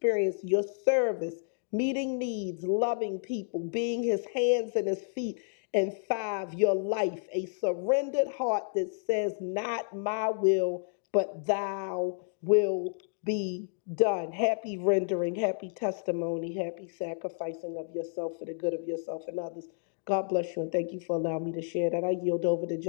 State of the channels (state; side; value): silent; right; digital silence